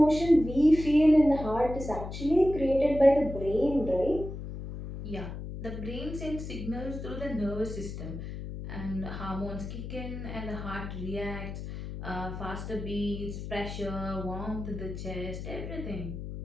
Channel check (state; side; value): noise; left; hum, 8 dB below the sound